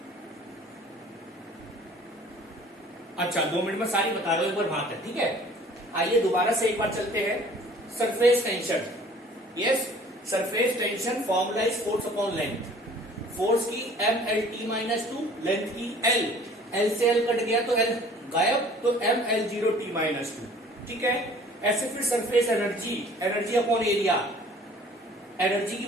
अच्छा 2 मिनट में सारी बता रहा हूं, एक बार बात है, ठीक है। आइए दोबारा से एक बार चलते हैं। Surface tension, yes surface tension formula is force upon length. Force की mlt-2, लेंथ की l, l से l कट गया तो l गायब, तो ml0t-2, ठीक है। ऐसे फिर surface energy, energy upon area, energy की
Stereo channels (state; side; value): normal; both; correlation 0.51